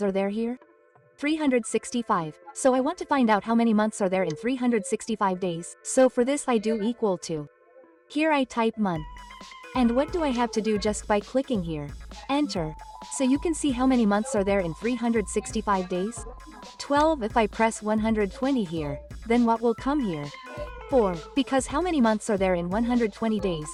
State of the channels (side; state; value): both; identical; correlation 1.00